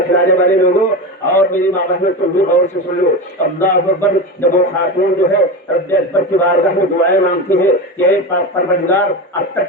کھلانے والے لوگوں، اور میری ماں بہنوں تم بھی غور سے سن لو۔ اللہ اکبر۔ جب وہ خاتون جو ہے رب اکبر کی بارگاہ میں دعائیں مانگتی ہے کہ اے پاک پروردگار اب تک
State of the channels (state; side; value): normal; both; correlation 0.22